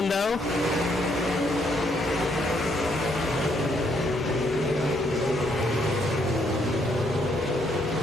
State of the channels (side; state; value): both; normal; correlation 0.72